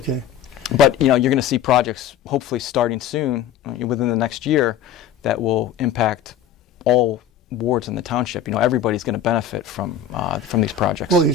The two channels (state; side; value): quieter; right; 8.7 dB